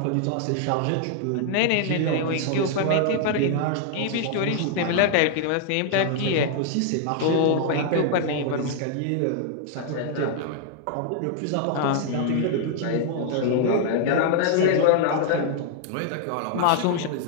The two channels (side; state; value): both; different; correlation 0.00